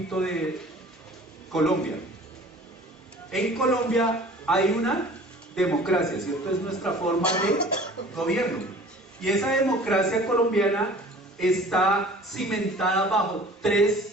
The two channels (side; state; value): both; normal; correlation 0.46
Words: de Colombia. En Colombia hay una democracia, ¿cierto? Es nuestra forma de gobierno. Y esa democracia colombiana está cimentada bajo